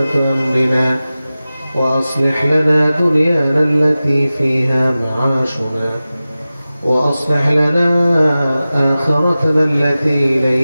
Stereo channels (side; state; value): both; inverted; correlation -0.96